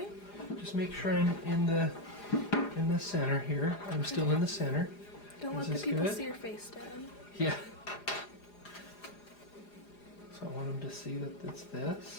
Just make sure I'm in the center here. I'm still in the center. Don't let the people see your face, Dad. Yeah. So I want them to see that it's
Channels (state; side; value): late; right; 4.9 ms